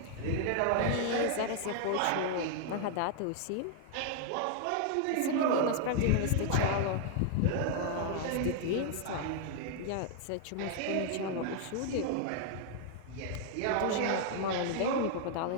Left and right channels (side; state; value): both; different; correlation 0.00